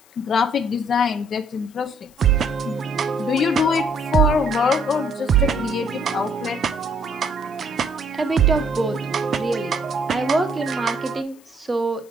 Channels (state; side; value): noise; left; hiss, 28 dB below the sound